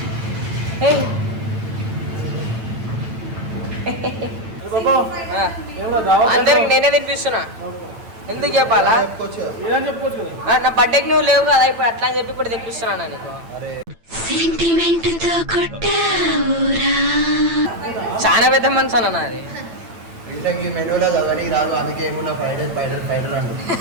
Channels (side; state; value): left; late; 8.9 ms